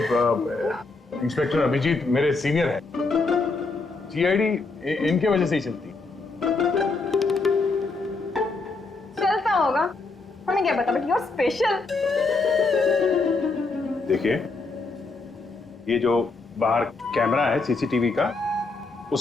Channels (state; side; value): quieter; right; 3.7 dB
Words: इंस्पेक्टर अभिजीत मेरे सीनियर हैं। सीआईडी इनके वजह से ही चलती। चलता होगा, हमें क्या पता, बट यू आर स्पेशल। देखिए, ये जो बाहर कैमरा है सीसीटीवी का,